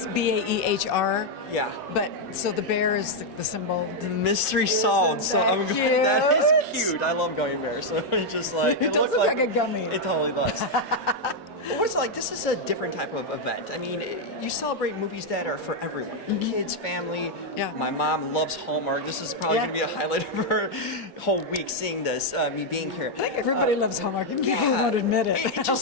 Baehr. Yeah. But so the bear is the symbol. The mystery solved. So I'm going. That is cute. I love gummy bears. So it's just like it does look like a gummy. It totally does. What What's it like? This is a different type of event. I mean, you celebrate movies that are for everyone. Kids, family. Yeah. My mom loves Hallmark. This is probably going to be a highlight of her whole week seeing this, me being here. I think everybody loves Hallmark. Even people who won't admit it. It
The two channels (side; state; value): both; normal; correlation 0.00